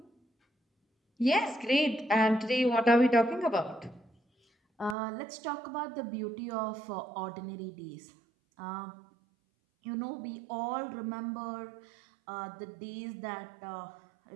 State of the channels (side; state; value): left; drops out; at 5.0 s